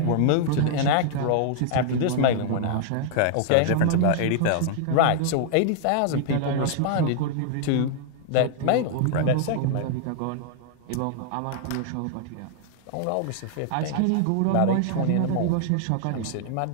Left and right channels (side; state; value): both; different; correlation -0.01